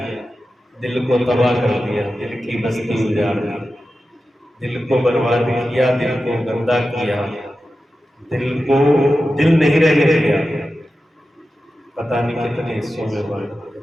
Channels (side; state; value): both; normal; correlation 0.92